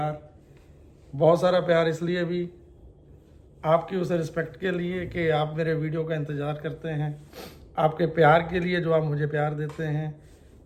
बहुत सारा प्यार। इसलिए भी आपकी उस रिस्पेक्ट के लिए कि आप मेरे वीडियो का इंतज़ार करते हैं, आपके प्यार के लिए जो आप मुझे प्यार देते हैं,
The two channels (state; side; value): identical; both; correlation 1.00